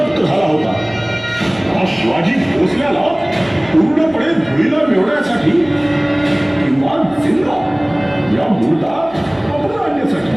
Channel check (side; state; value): left; noise; hum, 25 dB below the sound